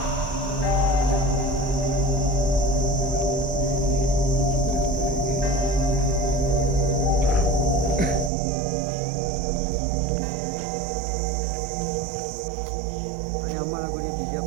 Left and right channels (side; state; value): left; drops out; at 8.3 s